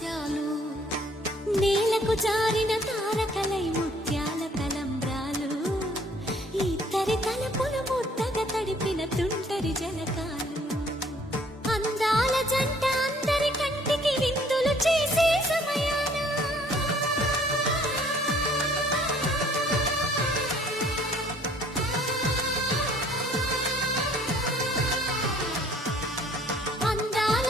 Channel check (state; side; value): normal; both; correlation 0.59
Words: నేలకు జారిన తారకలై ముత్యాల తలంబ్రాలు ఇద్దరి తలపులు ముద్దగా తడిపిన తుంటరి జలకాలు అందాల జంట అందరి కంటికి విందులు చేసే సమయాన అందాల